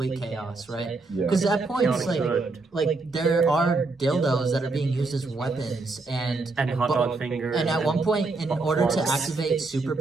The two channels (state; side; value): quieter; left; 3.6 dB